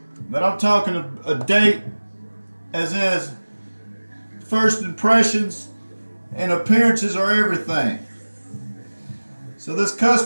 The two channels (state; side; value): inverted; both; correlation -1.00